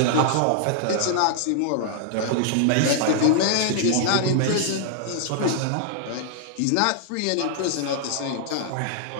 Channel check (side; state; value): both; different; correlation -0.01